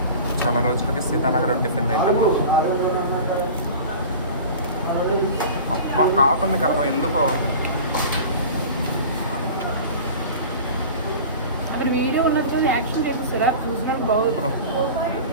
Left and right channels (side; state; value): both; inverted; correlation -0.37